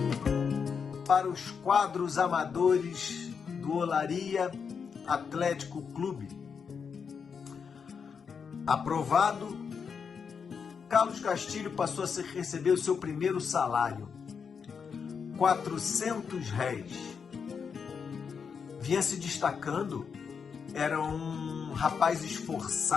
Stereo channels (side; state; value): right; quieter; 6.2 dB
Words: Para os quadros amadores do Olaria Atlético Clube. Aprovado, Carlos Castilho passou a receber o seu primeiro salário, 400 réis. Vinha se destacando, era um rapaz